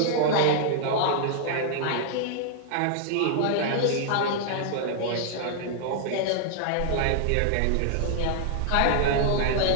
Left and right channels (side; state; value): both; different; correlation -0.01